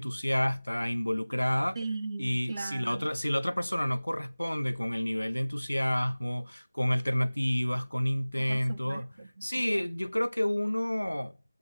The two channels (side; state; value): both; inverted; correlation -0.99